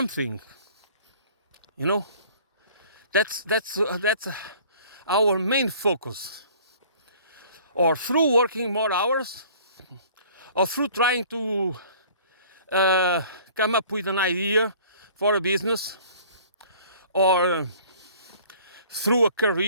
You know, that's our main focus. Or through working more hours, or through trying to come up with an idea for a business, or through a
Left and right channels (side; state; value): both; inverted; correlation -0.51